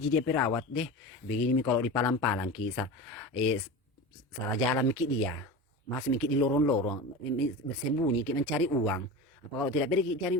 dia perawat deh begini mi kalau di palang-palang kisah salah jalan mikir dia masih mikir di lorong-lorong bersembunyi kita mencari uang apa kalau tidak pergi cari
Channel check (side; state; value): both; normal; correlation 0.29